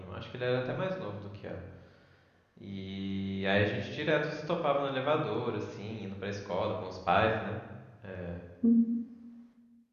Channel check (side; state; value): both; identical; correlation 1.00